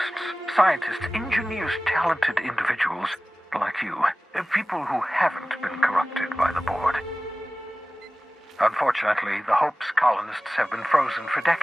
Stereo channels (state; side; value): normal; both; correlation 0.97